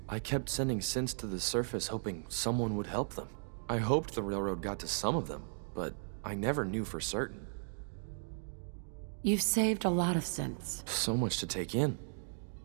I kept sending synths to the surface hoping someone would help them. I hoped the railroad got to some of them, but I never knew for certain. You've saved a lot of synths. So much to take in.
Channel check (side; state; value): left; silent; digital silence